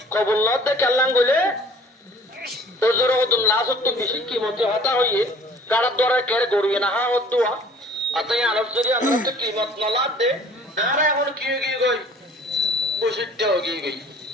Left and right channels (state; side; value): normal; both; correlation 0.51